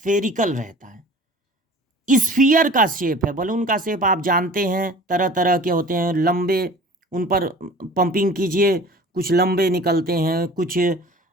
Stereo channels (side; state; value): both; normal; correlation 0.43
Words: रहता है। स्फीयर का शेप है। बलून का शेप आप जानते हैं, तरह तरह के होते हैं। लंबे, उन पर पंपिंग कीजिए, कुछ लंबे निकलते हैं, कुछ